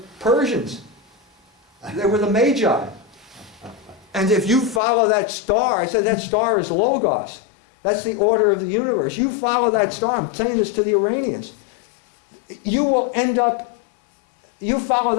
Persians. They were the Magi. And if you follow that star, I said that star is Logos. That's the order of the universe. You follow that star. I'm saying this to the Iranians. You will end up, you follow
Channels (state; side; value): drops out; right; at 4.8 s